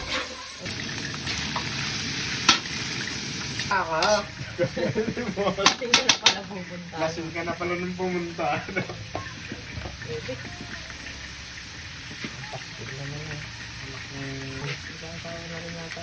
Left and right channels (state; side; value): identical; both; correlation 1.00